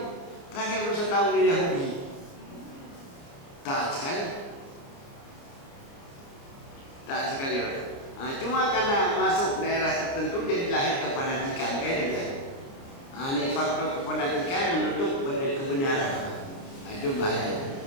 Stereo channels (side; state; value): right; late; 29 ms